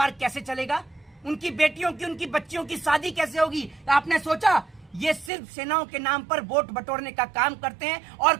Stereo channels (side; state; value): left; drops out; at 5.3 s